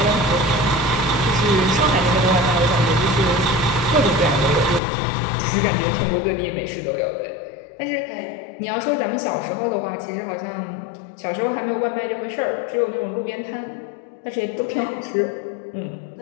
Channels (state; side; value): drops out; right; at 4.8 s